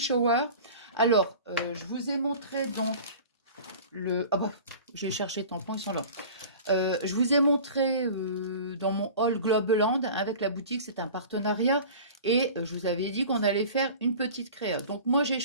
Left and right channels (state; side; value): inverted; both; correlation -0.40